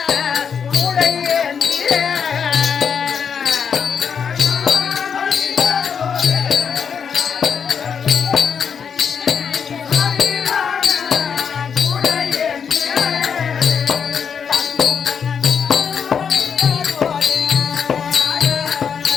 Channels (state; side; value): quieter; right; 6.9 dB